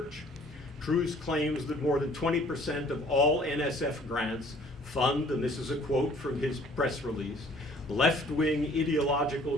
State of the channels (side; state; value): both; normal; correlation 0.55